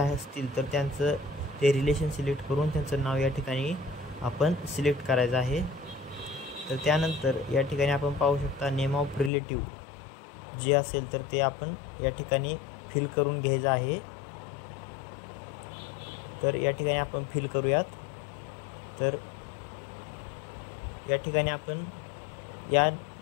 तर त्यांचं ते रिलेशन सिलेक्ट करून त्यांचं नाव या ठिकाणी आपण सिलेक्ट करायचं आहे। तर त्यानंतर या ठिकाणी आपण पाहू शकता नेम ऑफ रिलेटिव्ह जे असेल तर ते आपण या ठिकाणी फिल करून घ्यायचं आहे. तर या ठिकाणी आपण फिल करूयात. तर या ठिकाणी आपण या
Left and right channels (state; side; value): drops out; right; at 9.3 s